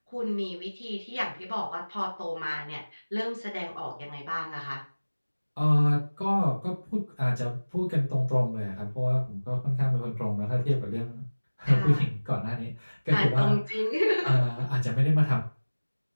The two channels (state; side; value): inverted; both; correlation -1.00